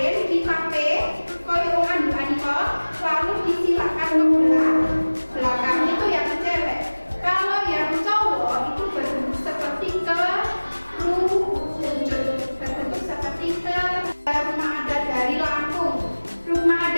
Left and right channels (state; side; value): inverted; both; correlation -1.00